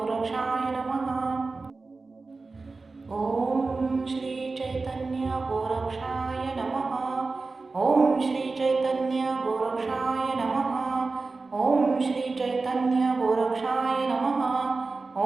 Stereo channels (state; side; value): quieter; left; 3.8 dB